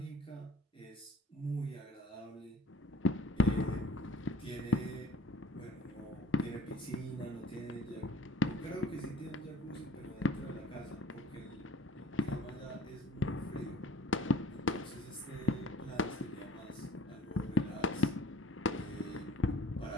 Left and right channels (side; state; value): both; normal; correlation 0.49